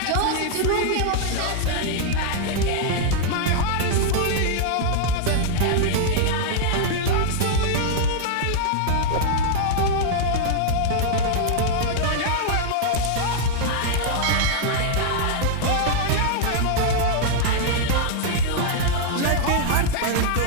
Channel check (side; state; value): both; different; correlation -0.01